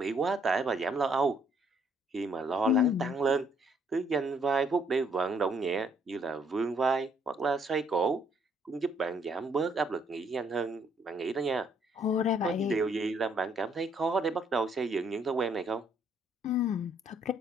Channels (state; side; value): normal; both; correlation 0.67